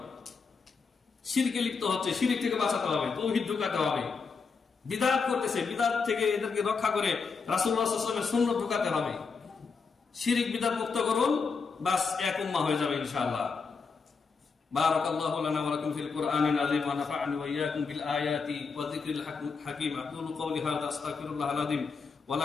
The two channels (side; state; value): right; quieter; 5.0 dB